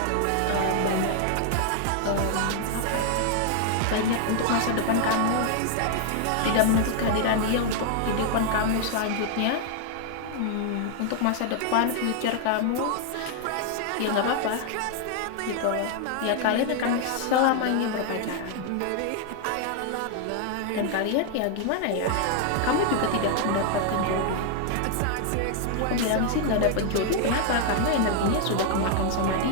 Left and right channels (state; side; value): different; both; correlation 0.00